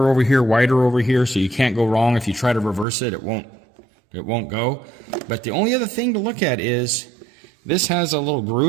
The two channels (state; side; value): drops out; left; at 2.9 s